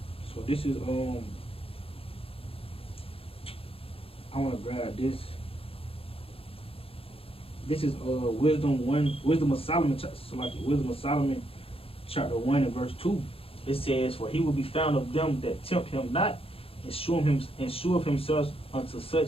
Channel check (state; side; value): late; right; 0.27 ms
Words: So this is I wanna grab this. This is Wisdom of Solomon, Wisdom of Solomon, chapter 1 and verse 2. It says, "For he will be found of them that tempt him not, and sure of himself unto